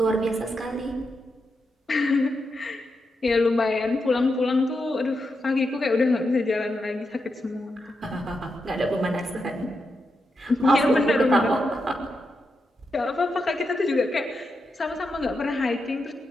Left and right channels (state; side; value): normal; both; correlation 0.86